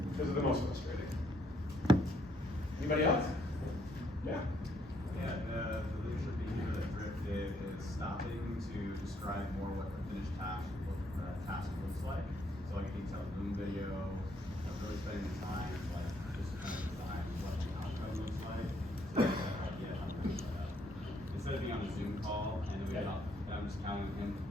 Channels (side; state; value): both; normal; correlation 0.70